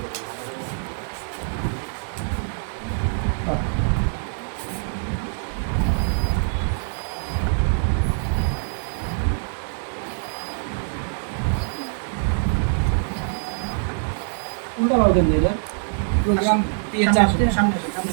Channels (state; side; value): silent; left; digital silence